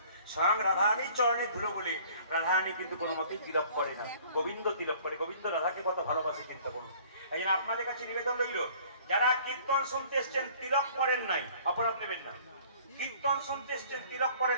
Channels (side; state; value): both; inverted; correlation -0.52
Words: স্বয়ং রাধারানীর চরণে ধুলো বলে রাধারানী কিন্তু কোনো মতেই তিলক করে না, গোবিন্দ তিলক করে। গোবিন্দ রাধাকে কত ভালোবাসে চিন্তা করুন। এই জন্য আপনাদের কাছে নিবেদন রইল, যারা কীর্তন শুনতে এসছেন তিলক করেন নাই, অপরাধ নেবেন না। কীর্তন শুনতে এসছেন তিলক